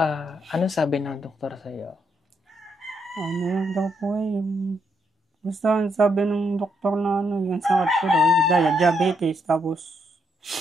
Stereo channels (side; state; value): both; normal; correlation 0.77